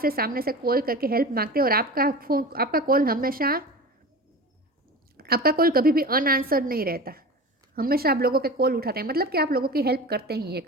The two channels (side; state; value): both; normal; correlation 0.32